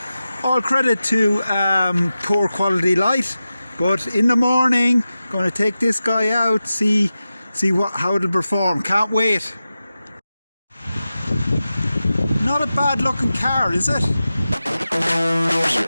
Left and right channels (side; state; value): both; inverted; correlation -0.93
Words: All credit to poor quality light, but in the morning, going to take this guy out, see how it'll perform. Can't wait. Not a bad looking car, is it?